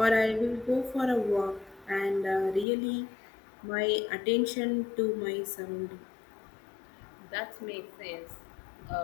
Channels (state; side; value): drops out; right; at 2.7 s